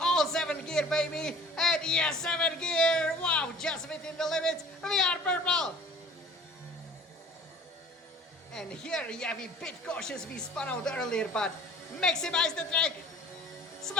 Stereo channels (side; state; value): both; normal; correlation 0.48